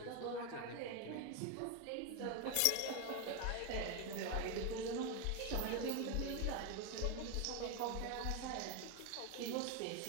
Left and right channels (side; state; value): both; different; correlation 0.02